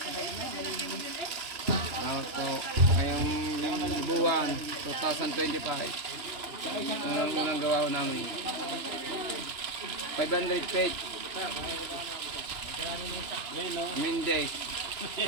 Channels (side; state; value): left; late; 2.9 ms